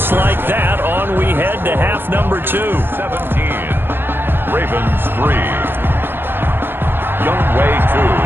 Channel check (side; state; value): left; late; 0.10 ms